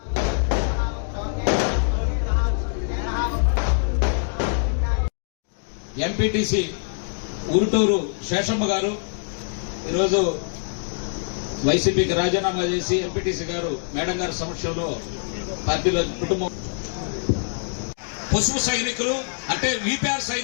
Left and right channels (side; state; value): right; silent; digital silence